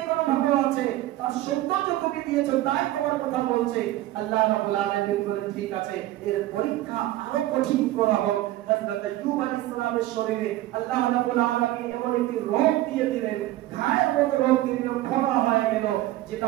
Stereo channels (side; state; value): left; quieter; 15.7 dB